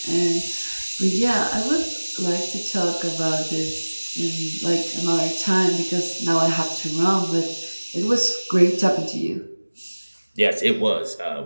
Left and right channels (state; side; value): inverted; both; correlation -1.00